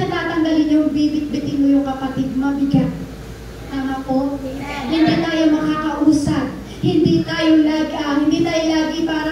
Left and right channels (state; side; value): identical; both; correlation 1.00